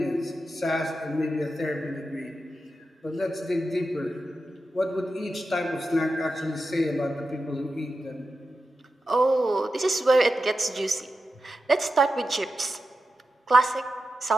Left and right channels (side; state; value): both; normal; correlation 0.90